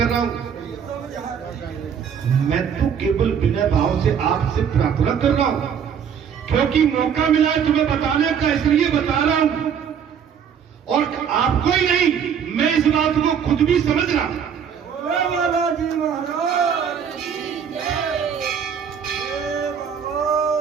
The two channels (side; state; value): left; quieter; 7.7 dB